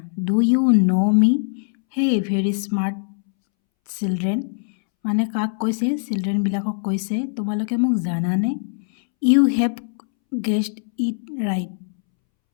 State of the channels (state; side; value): silent; right; 65 dB below the other